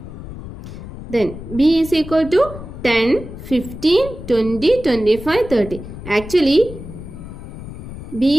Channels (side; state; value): left; noise; rumble, 12 dB below the sound